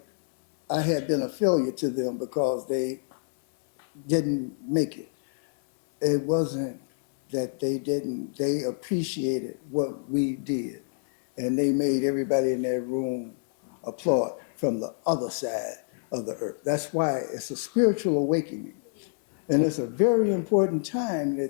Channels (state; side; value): silent; right; 60 dB below the other